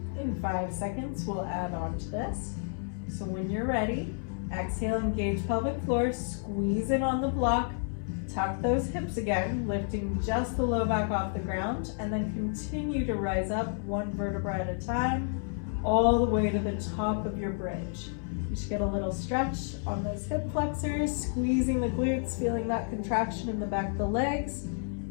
In 5 seconds, we'll add on to this. So when you're ready, exhale, engage pelvic floor, squeeze in on the block, tuck those hips again, lifting just the low back off the ground, and then continue to rise up one vertebra at a time, all the way to the top of your bridge. You should get a little stretch on those hip flexors, squeezing the glutes, feeling that contraction in the back of the legs.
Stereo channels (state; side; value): silent; right; 57 dB below the other